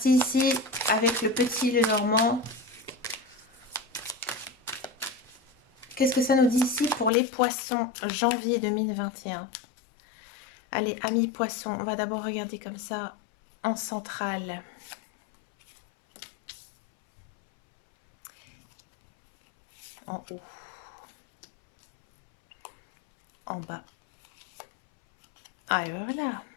ici avec le petit, le normand. Qu'est-ce que ça nous dit ici pour les poissons, janvier 2021? Allez, amis poissons, on va d'abord regarder comme ça en centrale. En haut. En bas. Ah, et voilà.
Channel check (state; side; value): drops out; right; at 7.1 s